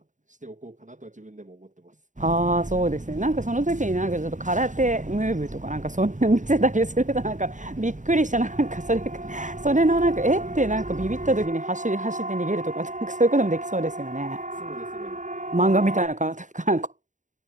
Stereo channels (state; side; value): late; left; 0.36 ms